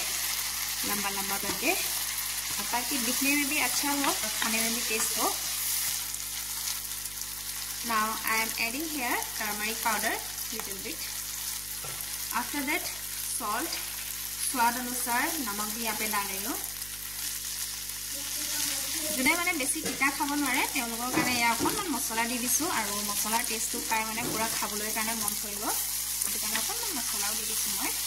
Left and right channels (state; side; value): noise; right; hum, 15 dB below the sound